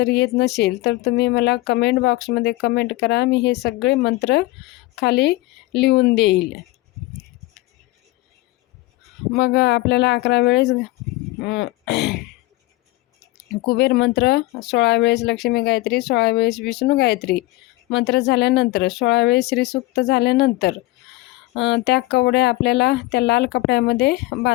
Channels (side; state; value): right; quieter; 19.3 dB